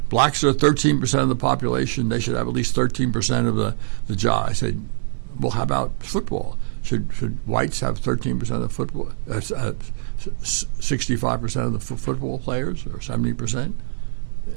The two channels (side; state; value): left; silent; 57 dB below the other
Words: Blacks are 13% of the population. They should have at least 13% of the job. I said, well, how about football? Should whites have 13% of the football, 65% of the football players, or 70%?